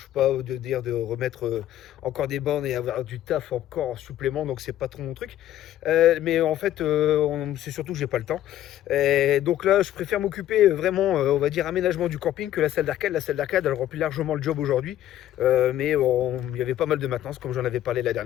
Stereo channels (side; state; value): right; quieter; 12.5 dB